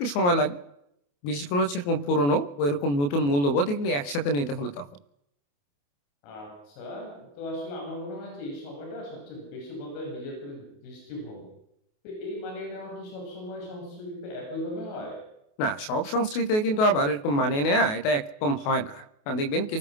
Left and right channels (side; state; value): right; late; 28 ms